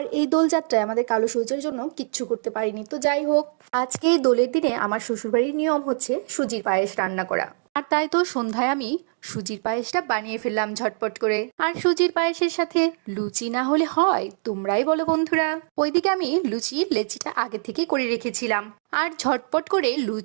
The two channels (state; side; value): silent; left; digital silence